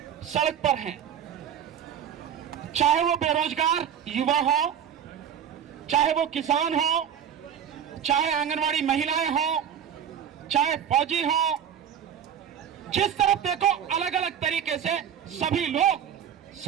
सड़क पर हैं। चाहे वो बेरोजगार युवा हो, चाहे वो किसान हो, चाहे आंगनवाड़ी महिलाएं हो, चाहे फौजी हो, जिस तरफ देखो अलग अलग तरीके से सभी लोग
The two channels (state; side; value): quieter; left; 8.8 dB